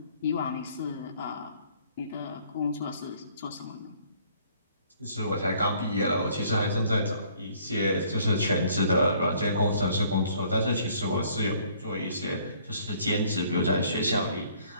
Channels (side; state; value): both; inverted; correlation -0.60